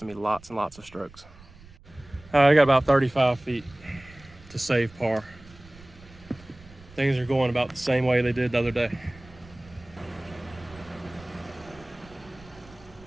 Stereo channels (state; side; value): noise; right; rumble, 22 dB below the sound